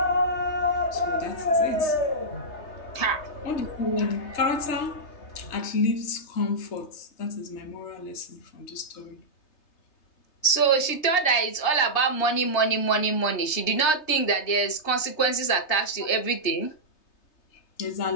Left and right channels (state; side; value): late; right; 3.3 ms